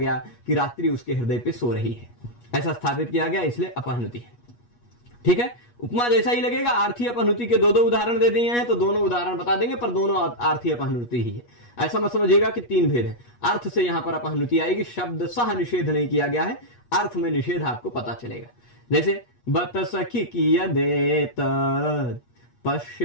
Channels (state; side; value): late; right; 8.3 ms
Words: कि रात्रि उसके हृदय पे सो रही है, ऐसा स्थापित किया गया, इसलिए अपहनुति है, ठीक है। उपमा जैसा ही लगेगा। आर्थी अपहनुति के दो उदाहरण दे दिए हैं तो दोनों उदाहरण बता देंगे, पर दोनों आर्थी अपहनुति ही है। ऐसा मत समझिएगा कि तीन भेद है। अर्थ से यहां पर अपहनुति आएगी, शब्द सह निषेध नहीं किया गया है, अर्थ में निषेध आपको पता चलेगा। जैसे बत सखी कियदेत